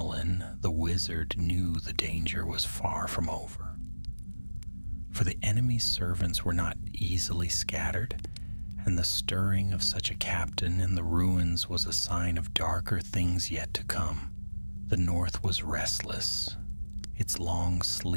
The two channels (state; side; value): inverted; both; correlation -1.00